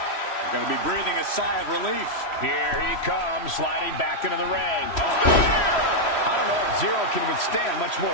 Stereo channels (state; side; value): late; right; 3.1 ms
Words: going to be breathing a sigh of relief. Here he comes, sliding back into the ring. I don't know if Zero can withstand much more